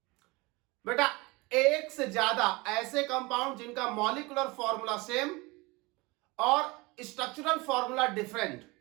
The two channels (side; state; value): left; quieter; 24.2 dB